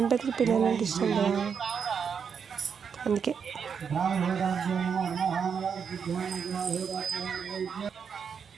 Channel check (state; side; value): quieter; left; 6.7 dB